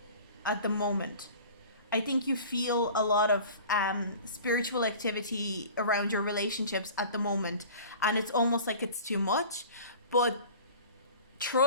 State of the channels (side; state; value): both; inverted; correlation -0.42